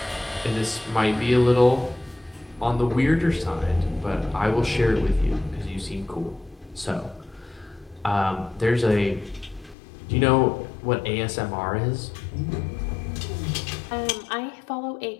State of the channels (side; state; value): right; drops out; at 9.8 s